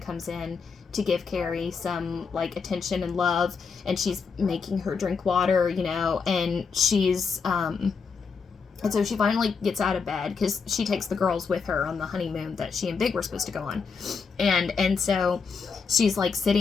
in to give Carrie some, like, attention and love, and she's making her drink water, you know, and and so she finally gets out of bed because she takes the girls with her on the honeymoon that she and Big were supposed to go on, and so she's like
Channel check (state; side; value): quieter; right; 5.4 dB